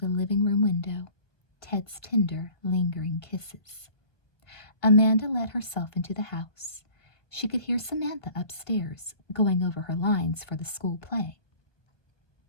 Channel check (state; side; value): late; right; 1.5 ms